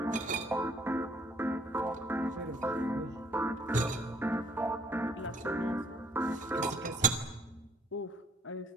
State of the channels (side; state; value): both; normal; correlation 0.61